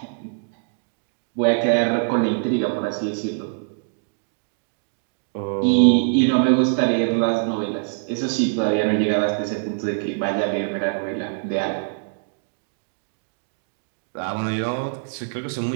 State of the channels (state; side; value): silent; left; digital silence